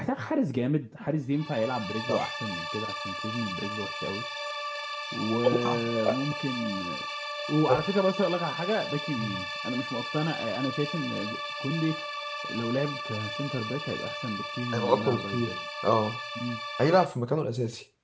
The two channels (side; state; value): both; identical; correlation 1.00